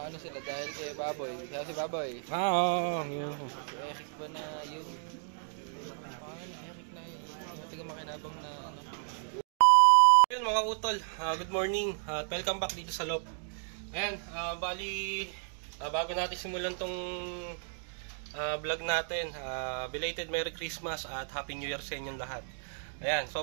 sila dahil kay Baboy. Kaya si Baboy. Oo. Si Eric ba na yung... Eric na yung taga-makinabang na ano. Ayun mga utol, good morning at welcome back dito sa Lop. Ayan, bali bago natin simulan tong vlog natin, belated Merry Christmas at Happy New Year sa inyong lahat. Ayan, so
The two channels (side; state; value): left; silent; digital silence